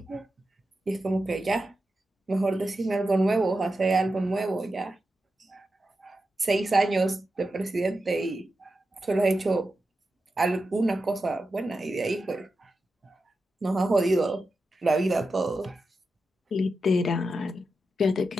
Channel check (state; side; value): normal; both; correlation 0.90